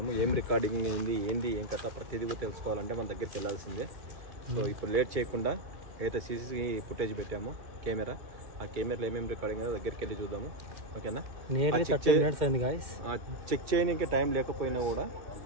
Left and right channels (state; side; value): late; left; 2.3 ms